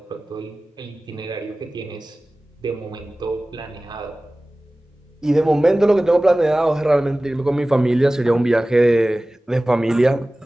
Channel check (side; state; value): both; normal; correlation 0.97